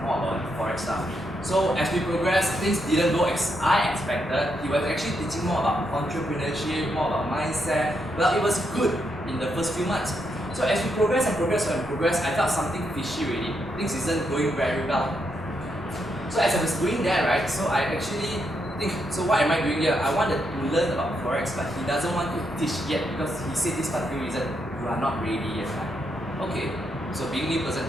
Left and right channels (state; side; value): normal; both; correlation 0.80